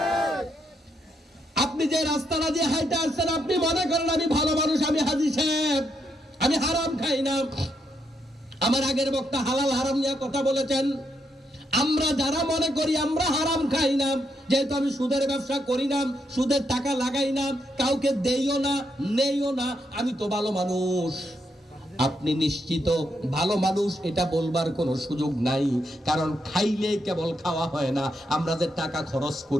আপনি যে রাস্তাটা দিয়ে হাইটা আসছেন, আপনি মনে করেন আমি ভালো মানুষ, আমি হাজী সাহেব, আমি হারাম খাই না। আমার আগের বক্তা হালাল হারাম নিয়ে কথা বলেছেন। আমরা যারা মনে করি আমরা হারাম খাই না, যেহেতু আমি সুদের ব্যবসা করি না, সুদের টাকা লাগাই না, কাউকে দেইও না, নেইও না, আমি তো ভালো মানুষ। আপনি নিশ্চিত ভালো মানুষ, এটা বলবার কোনো সুযোগ নাই। কারণ খাইলে কেবল খাওয়া হয় না। আমরা যে টাকা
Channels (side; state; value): both; normal; correlation 0.79